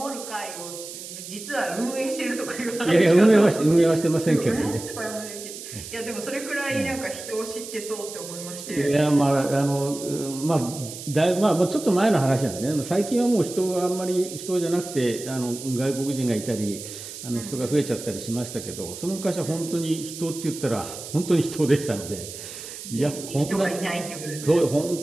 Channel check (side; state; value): right; noise; hiss, 11 dB below the sound